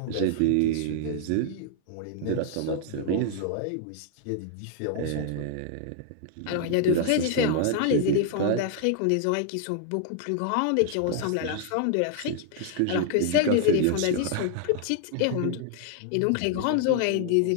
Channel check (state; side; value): different; both; correlation 0.00